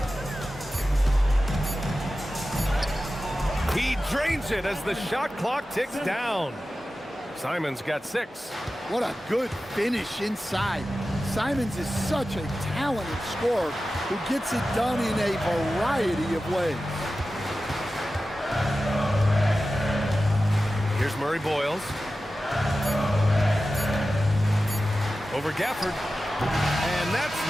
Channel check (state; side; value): normal; both; correlation 0.94